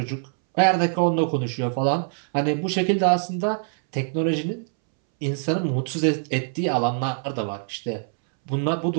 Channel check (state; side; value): silent; left; 63 dB below the other